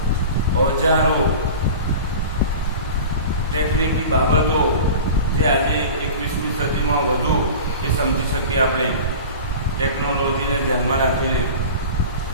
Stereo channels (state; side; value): inverted; both; correlation -0.35